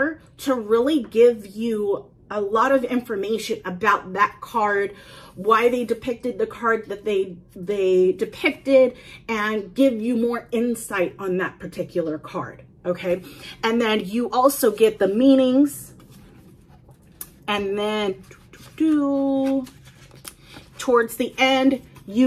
to really give you a lot of information about that card, why they depicted the card that they depicted, and give you more insight on that particular card, okay? And then you also get the meanings, and then towards the end,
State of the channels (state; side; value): identical; both; correlation 1.00